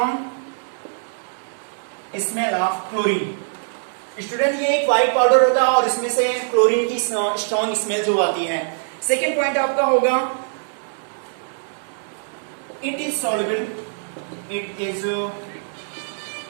smell of chlorine। Student ये एक व्हाइट पाउडर होता है और इसमें से क्लोरीन की स्ट्रॉन्ग स्मेल जो आती है। सेकेंड पॉइंट आपका होगा it is soluble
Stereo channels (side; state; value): left; silent; digital silence